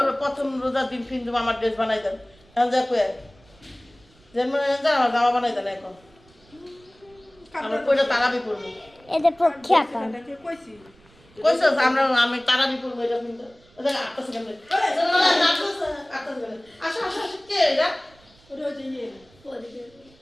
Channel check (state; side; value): noise; right; rumble, 29 dB below the sound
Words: প্রথম রোজার দিন ফিন্দু আমার ড্রেস বানাই দেন এখন যা কয়ে যেমন আমার জামা বানাই দেন এখন আমরা কইটা তারাবি করবো এদের পক্ষে আপা এটাকে কইছি। কইছো আমি তারাবি করবো এটা কিন্তু ওদের 8 সেকেন্ড আসো আসো আসো কে এটা ওটা হচ্ছে ইয়ে,